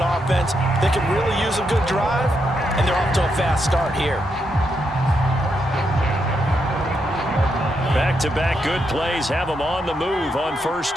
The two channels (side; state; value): both; normal; correlation 0.81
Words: that can really use a good drive, and they're off to a fast start here. Back-to-back good plays have them on the move on first